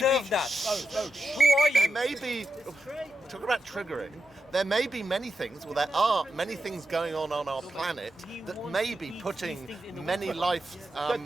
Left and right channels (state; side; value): normal; both; correlation 0.86